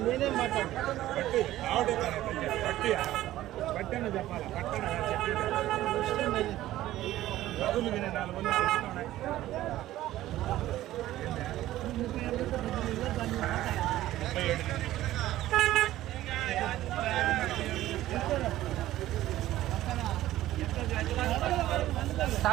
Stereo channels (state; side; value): quieter; left; 14.7 dB